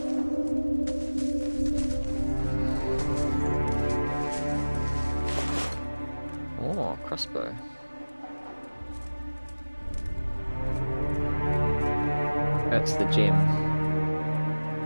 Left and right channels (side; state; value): both; inverted; correlation -1.00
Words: Crossbow. That's the gem.